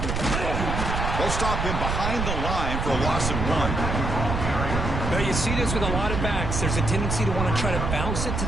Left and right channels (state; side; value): noise; right; rumble, 2 dB below the sound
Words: They'll stop him behind the line for a loss of 1. Now you see this with a lot of backs. There's a tendency to want to try to bounce it to